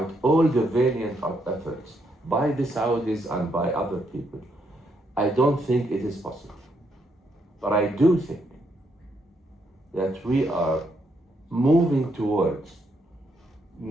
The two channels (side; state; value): both; normal; correlation 0.76